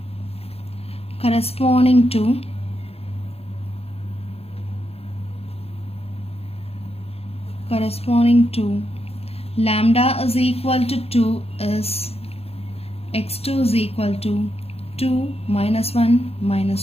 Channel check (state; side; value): late; right; 0.29 ms